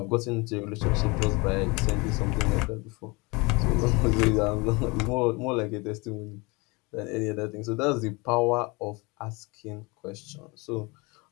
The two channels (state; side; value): quieter; right; 26.7 dB